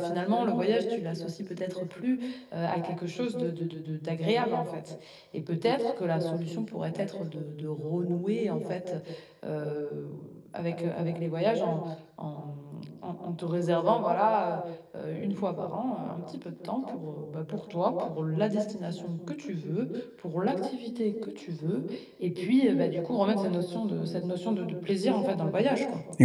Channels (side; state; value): both; identical; correlation 1.00